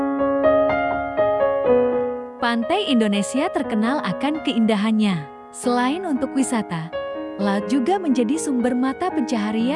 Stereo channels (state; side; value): identical; both; correlation 1.00